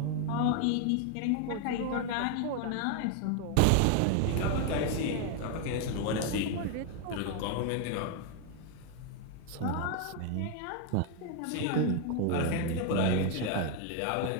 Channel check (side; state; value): both; different; correlation 0.00